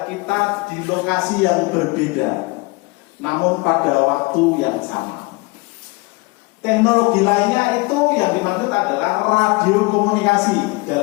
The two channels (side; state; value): right; quieter; 25.6 dB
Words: kita di lokasi yang berbeda, namun pada waktu yang sama. Teknologi lainnya itu yang dimaksud adalah radio komunikasi